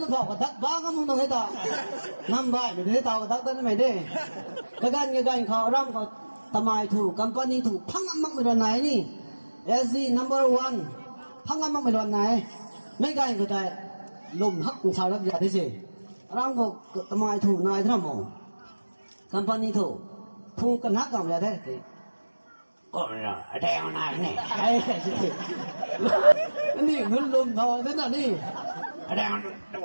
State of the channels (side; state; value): both; inverted; correlation -1.00